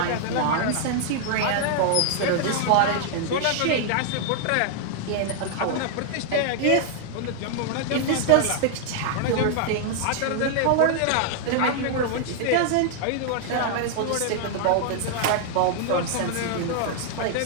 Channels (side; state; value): both; different; correlation 0.00